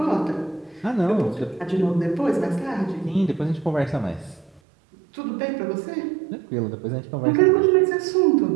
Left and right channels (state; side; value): drops out; left; at 4.6 s